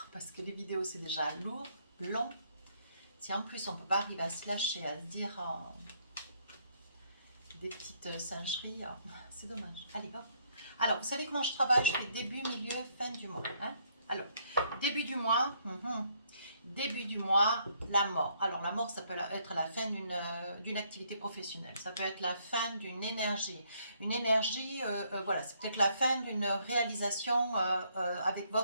parce que les vidéos, c'est déjà lourd, long. Si en plus, on ne peut pas arriver à se lâcher, à se dire des petites singeries, c'est dommage. Allez, hop. Alors, vous savez comment je travaille? Je fais début, milieu, fin du mois. Hein. Alors, début du mois, début du mois, la mort. Alors la mort, ça peut être la fin d'une activité professionnelle, ça peut être la fin d'une énergie. Une énergie, voilà, c'est peut-être la fin d'une réalisation avec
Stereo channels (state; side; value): inverted; both; correlation -0.69